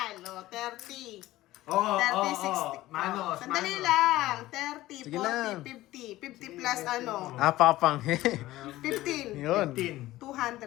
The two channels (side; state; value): right; quieter; 16.5 dB